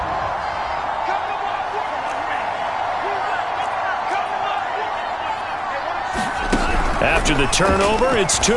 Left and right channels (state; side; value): identical; both; correlation 1.00